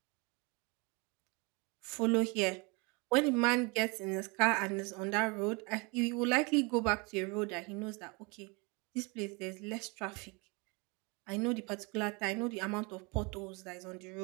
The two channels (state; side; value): quieter; left; 29.5 dB